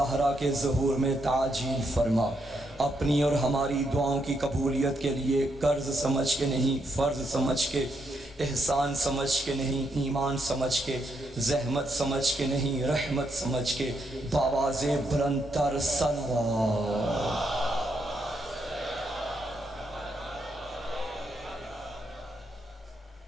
کے ظہور میں تعجیل فرما۔ اپنی اور ہماری دعاؤں کی قبولیت کے لیے قرض سمجھ کے نہیں، فرض سمجھ کے، احسان سمجھ کے نہیں، ایمان سمجھ کے، زحمت سمجھ کے نہیں، رحمت سمجھ کے باواز بلند تر صلوات۔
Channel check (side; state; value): both; normal; correlation 0.78